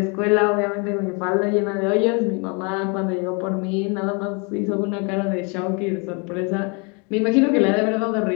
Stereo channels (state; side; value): quieter; right; 33.1 dB